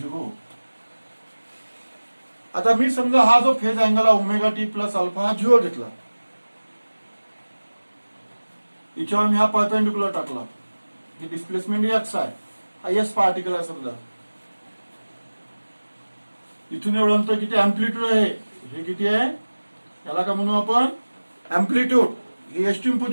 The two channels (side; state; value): both; inverted; correlation -1.00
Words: आता मी समजा हा जो फेज अँगल आहे ओमेगा टी प्लस अल्फा हा 0 घेतला, याच्यावर मी हा परपेंडिक्युलर टाकला, ही डिस्प्लेसमेंट एक्स आहे, हा एस पार्टिकल आहे समजा, इथून एवढं अंतर किती अँप्लिट्यूड आहे, हे किती आहे, याला काय म्हणू आपण अँप्लिट्यूड, ही एक्स्ट्रीम